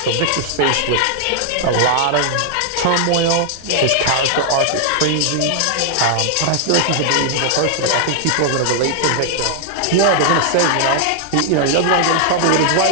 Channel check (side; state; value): both; different; correlation 0.00